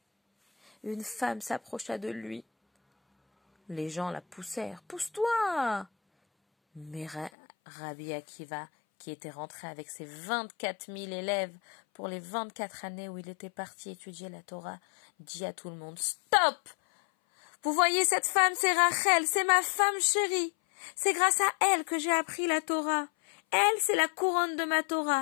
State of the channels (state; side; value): drops out; right; at 7.3 s